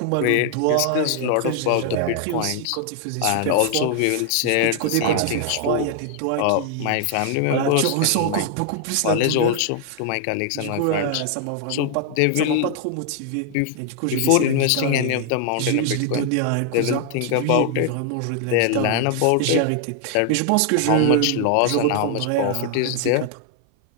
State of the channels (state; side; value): different; both; correlation 0.00